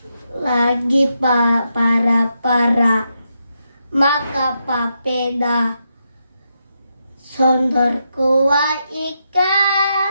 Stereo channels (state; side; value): inverted; both; correlation -0.83